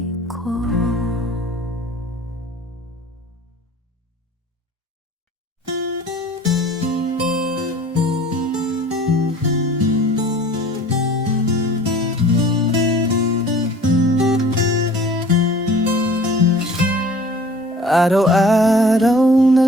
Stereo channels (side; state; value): both; normal; correlation 0.47